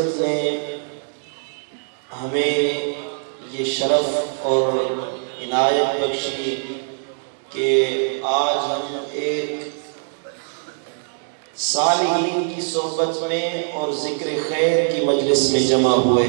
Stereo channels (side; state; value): left; silent; digital silence